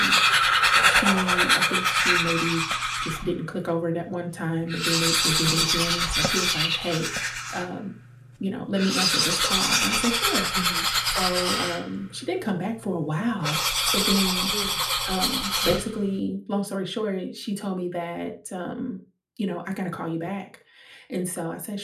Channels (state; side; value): identical; both; correlation 1.00